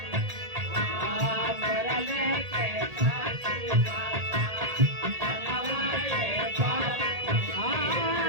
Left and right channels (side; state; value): left; late; 1.8 ms